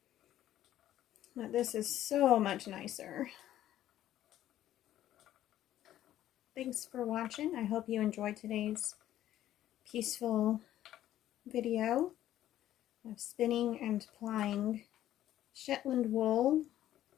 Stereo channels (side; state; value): right; quieter; 12.7 dB